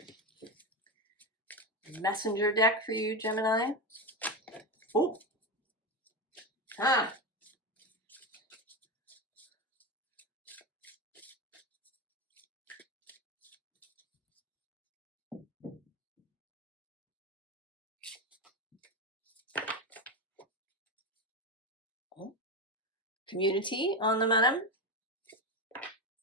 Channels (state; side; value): normal; both; correlation 0.15